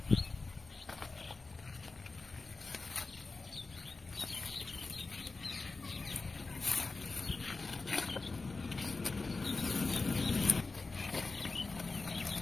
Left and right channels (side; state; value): right; quieter; 3.8 dB